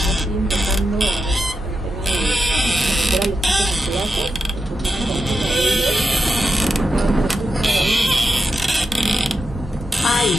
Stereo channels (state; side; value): normal; both; correlation 0.88